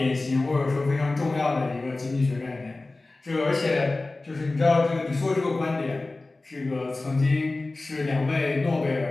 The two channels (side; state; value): right; quieter; 3.2 dB